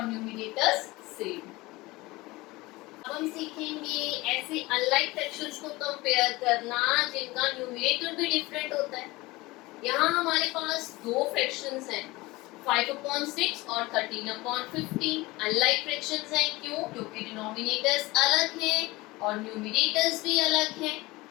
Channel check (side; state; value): right; quieter; 21.1 dB